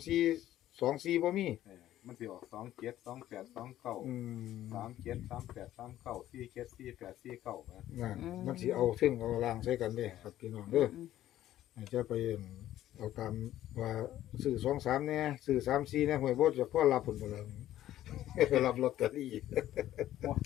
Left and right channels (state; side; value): quieter; right; 13.1 dB